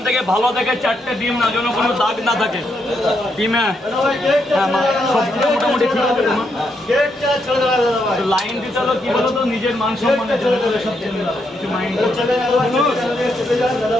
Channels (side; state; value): both; normal; correlation 0.79